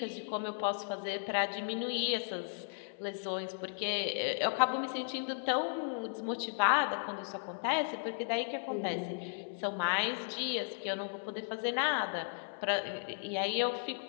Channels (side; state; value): right; silent; 54 dB below the other